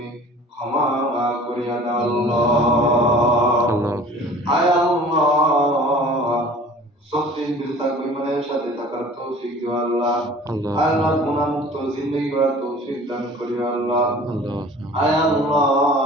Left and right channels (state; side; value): normal; both; correlation 0.46